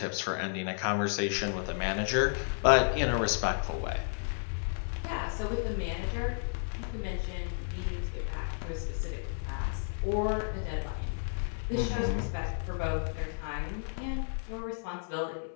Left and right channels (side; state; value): right; silent; 56 dB below the other